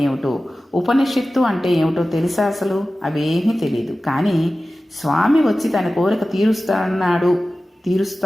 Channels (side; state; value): both; normal; correlation 0.95